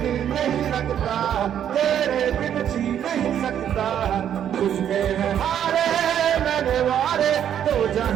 नहीं लगता, तेरे बिन जी नहीं सकता, तुझमें है हारे मैंने वारे तो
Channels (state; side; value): quieter; left; 9.7 dB